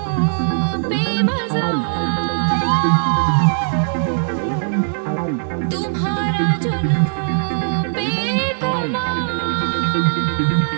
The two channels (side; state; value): left; silent; 66 dB below the other